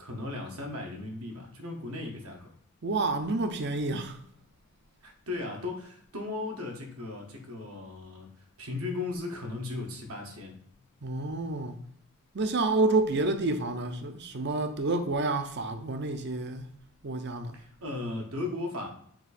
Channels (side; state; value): both; normal; correlation 0.20